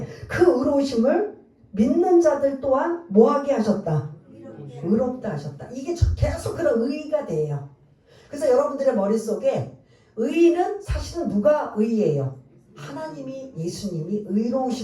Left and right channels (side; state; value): both; identical; correlation 1.00